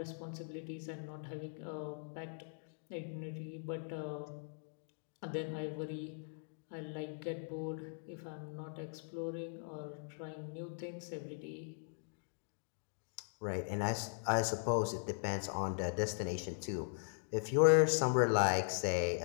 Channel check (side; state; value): right; silent; digital silence